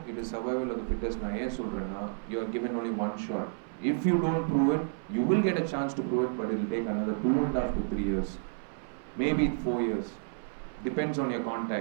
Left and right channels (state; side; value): silent; left; 57 dB below the other